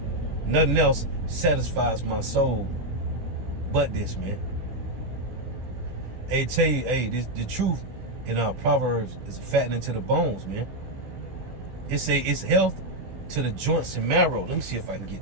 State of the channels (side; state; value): left; late; 16 ms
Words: Nothing else satisfies my soul but this, man. Hey, tell you, hey, the truth in our Proverbs is fattening to the bones, man. It say it's health to the joints and marrow. Let me see if I can